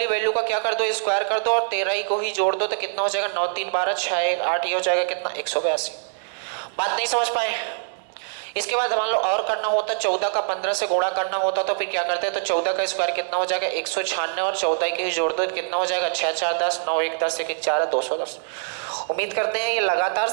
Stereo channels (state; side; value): silent; left; digital silence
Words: वैल्यू का क्या कर दो स्क्वायर कर दो और 13 ही को ही जोड़ दो तो कितना हो जाएगा 9 3 12 6 1 8, ये हो जाएगा कितना 182। बात नहीं समझ पाए। इसके बाद मान लो और करना होता 14 का 15 से गुणा करना होता तो फिर क्या करते हैं, तो 14 का स्क्वायर कितना हो जाएगा 196 और 14 के ही जोड़ दो कितना हो जाएगा 6 4 10 9 1 10 1 1 4 210। उम्मीद करते हैं ये लगातार